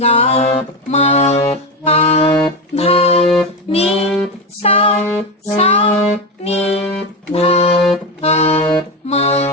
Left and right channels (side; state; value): both; normal; correlation 0.15